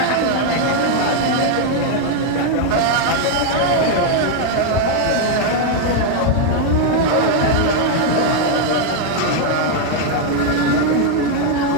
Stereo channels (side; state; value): both; different; correlation 0.00